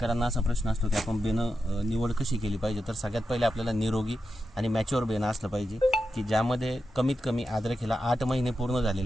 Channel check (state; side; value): normal; both; correlation 0.89